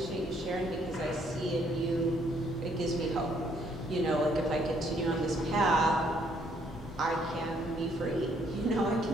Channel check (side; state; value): both; normal; correlation 0.67